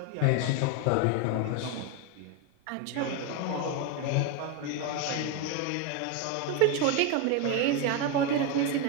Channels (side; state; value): both; different; correlation 0.02